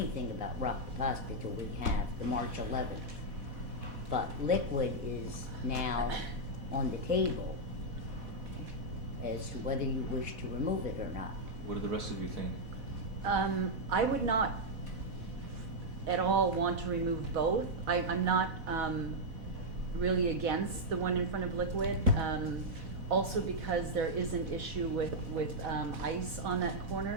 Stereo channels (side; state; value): left; late; 4.1 ms